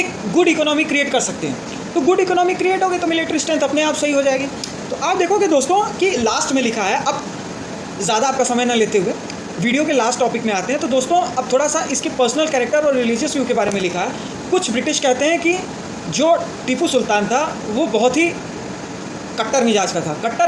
गुड इकोनॉमी क्रिएट कर सकते हैं। तो गुड इकोनॉमी क्रिएट होगी तो मिलिट्री स्ट्रेंथ अपने आप सही हो जाएगी। तो आप देखोगे दोस्तों कि लास्ट में लिखा है, अब ज़्यादा आपका समय न लेते हुए वीडियो के लास्ट टॉपिक में आते हैं। तो दोस्तों अब थोड़ा सा इसके पर्सनल कैरेक्टर और रिलीजियस व्यू के बारे में लिखा है। कुछ ब्रिटिश कहते हैं कि जो टीपू सुल्तान था वो बहुत ही कट्टर मिजाज का था।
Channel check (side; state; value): both; identical; correlation 1.00